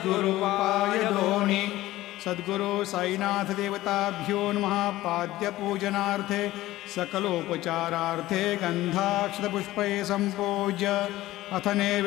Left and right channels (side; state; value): right; quieter; 16.4 dB